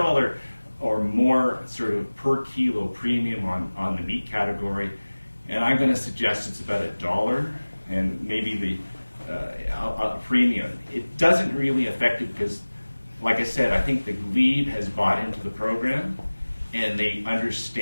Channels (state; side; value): inverted; both; correlation -1.00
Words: or more sort of per kilo premium on the meat category, and I'm going to suggest it's about $1 and maybe a premium. It doesn't really affect it because, like I said, I think the Glebe has bought into the program, and they